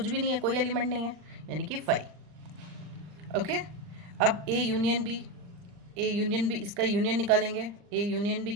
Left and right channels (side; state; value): left; late; 39 ms